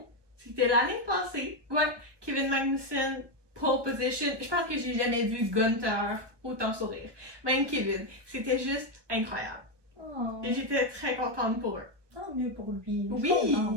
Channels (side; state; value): left; late; 1.2 ms